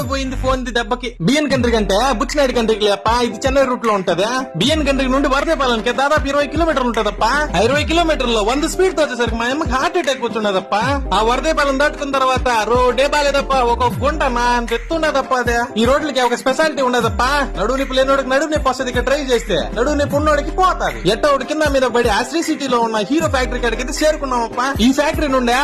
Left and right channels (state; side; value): identical; both; correlation 1.00